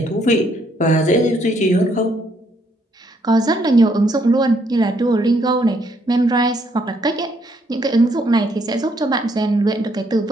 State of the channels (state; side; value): normal; both; correlation 0.71